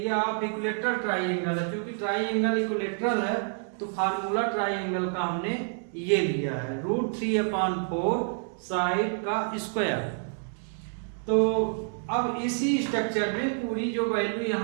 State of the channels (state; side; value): silent; left; 59 dB below the other